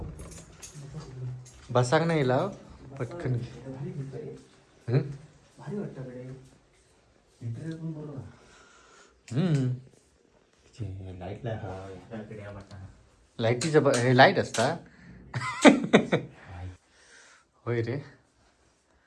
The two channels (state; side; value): identical; both; correlation 1.00